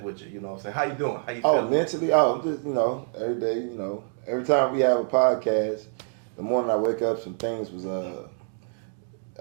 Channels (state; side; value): silent; left; digital silence